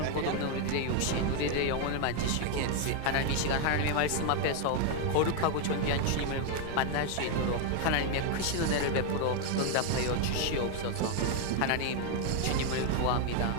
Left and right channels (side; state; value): both; different; correlation 0.01